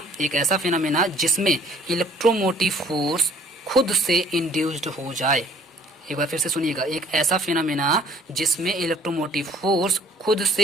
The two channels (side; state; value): both; normal; correlation 0.57